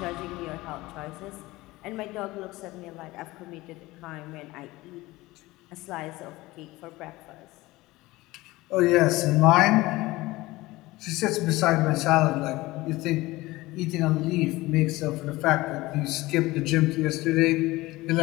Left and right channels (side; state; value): right; quieter; 19.6 dB